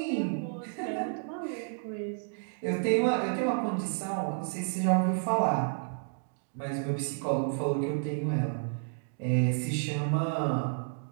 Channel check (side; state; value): left; silent; digital silence